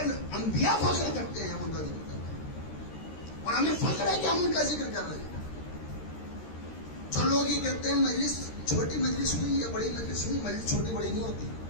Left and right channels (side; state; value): right; late; 13 ms